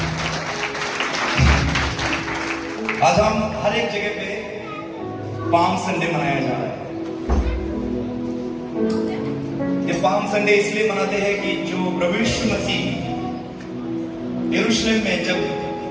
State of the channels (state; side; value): identical; both; correlation 1.00